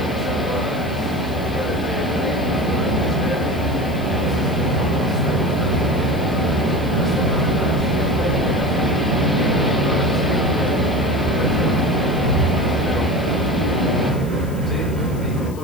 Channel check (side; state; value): left; noise; hiss, 21 dB below the sound